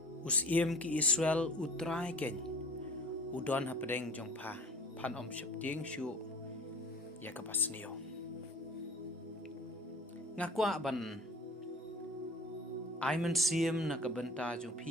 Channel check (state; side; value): normal; both; correlation 0.43